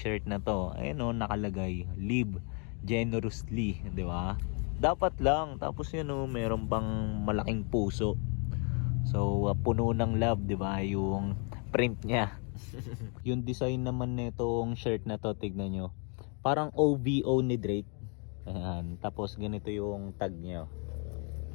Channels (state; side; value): quieter; right; 37.7 dB